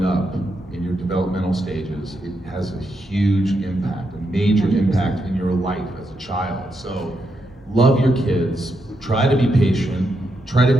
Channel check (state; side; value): normal; both; correlation 0.82